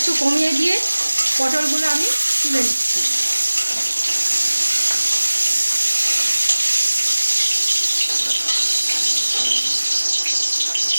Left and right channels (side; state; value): both; inverted; correlation -1.00